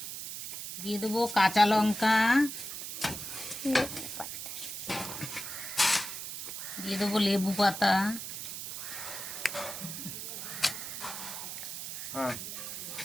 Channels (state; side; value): noise; right; hiss, 7 dB below the sound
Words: দিয়ে দেবো কাঁচা লঙ্কা, দিয়ে দেবো লেবু পাতা, হ্যাঁ